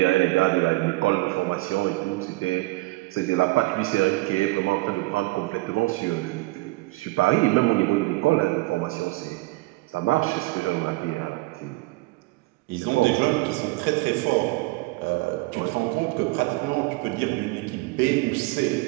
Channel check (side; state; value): left; quieter; 22.2 dB